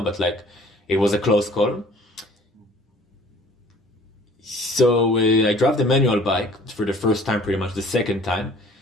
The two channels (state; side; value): normal; both; correlation 0.52